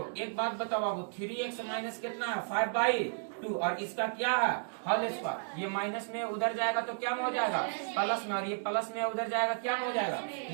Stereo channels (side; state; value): left; silent; digital silence